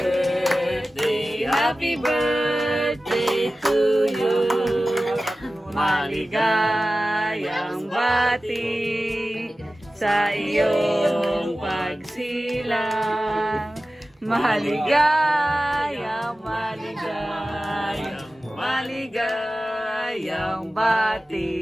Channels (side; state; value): both; normal; correlation 0.95